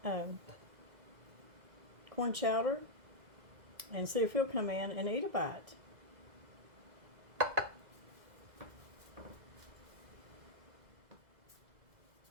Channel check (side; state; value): left; late; 2.0 ms